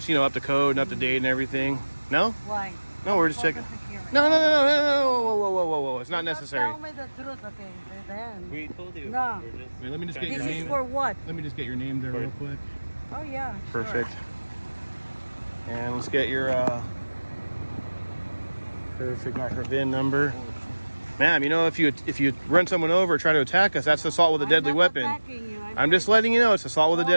up to code and up to date and everything. No? Why? No, we're just checking. No. Whoa. It's not necessary. Tell me the truth, okay? Then. We told you. No. We're just Wait, let me just get This your is name. for what? Let me just get your name there real quick. Oh yeah. Perfect. Sure. And let's get your perfect, got her VIN number. Ma'am, if you run someone over or try to attack us, that's assault with a deadly weapon. Attacking you. I'm just letting you know it's assault with a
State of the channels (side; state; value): both; inverted; correlation -1.00